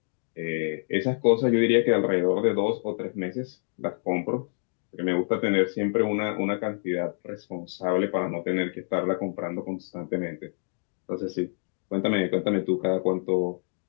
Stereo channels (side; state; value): right; silent; digital silence